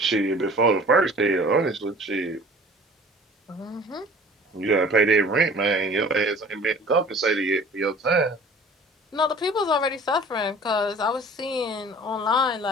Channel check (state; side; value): normal; both; correlation 0.47